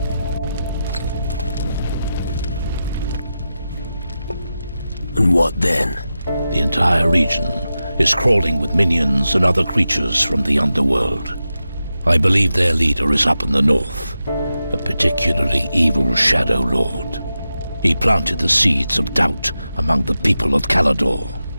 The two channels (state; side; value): inverted; both; correlation -0.91